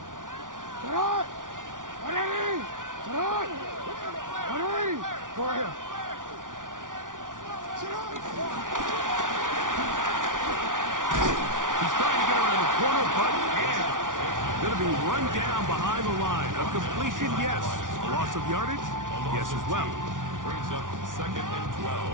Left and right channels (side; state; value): left; late; 0.88 ms